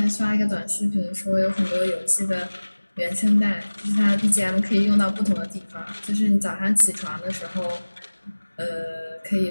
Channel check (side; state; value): both; inverted; correlation -1.00